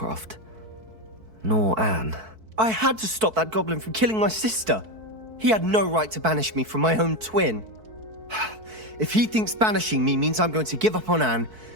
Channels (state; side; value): late; left; 4.6 ms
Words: Nor Anne. I had to stop that goblin from killing my sister. He had no right to banish me from my own twin. If he thinks banishing me means I'm going to give up on Anne,